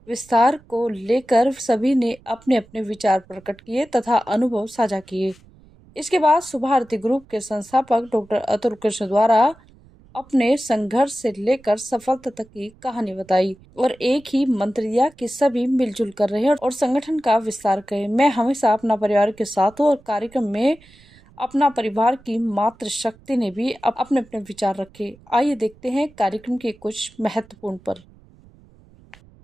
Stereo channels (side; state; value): right; noise; rumble, 27 dB below the sound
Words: विस्तार को लेकर सभी ने अपने अपने विचार प्रकट किए तथा अनुभव साझा किए। इसके बाद सुभारती ग्रुप के संस्थापक डॉक्टर अतुल कृष्ण द्वारा अपने संघर्ष से लेकर सफलता तक की कहानी बताई और एक ही मंत्र दिया कि सभी मिलजुल कर रहे और संगठन का विस्तार करें। मैं हमेशा अपना परिवार के साथ हूँ और कार्यक्रम में अपना परिवार की मातृ शक्ति ने भी अपने अपने विचार रखे। आइए देखते हैं कार्यक्रम के कुछ महत्वपूर्ण पर।